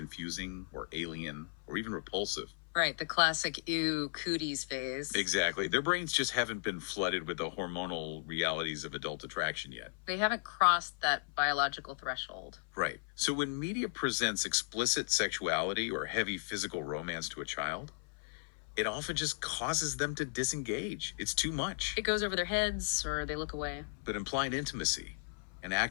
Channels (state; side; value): silent; right; 54 dB below the other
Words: or alien or even repulsive. Right, the classic ew cooties phase. Exactly. Their brains just haven't been flooded with the hormonal realities of adult attraction yet. They haven't crossed that biological threshold. Right. So when media presents explicit sexuality or heavy physical romance to a child, it often just causes them to disengage. It's too much. It goes over their heads or they look away. But implied intimacy, an